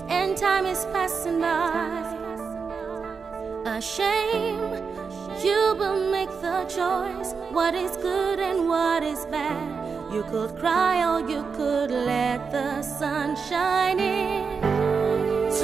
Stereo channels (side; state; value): left; quieter; 5.4 dB